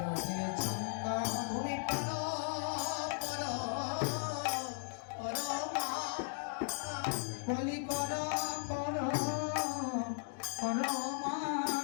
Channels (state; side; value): silent; right; digital silence